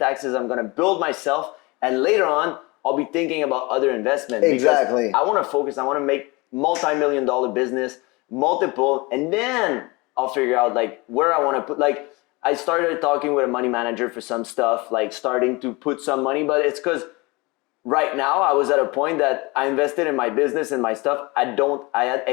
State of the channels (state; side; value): quieter; right; 25.0 dB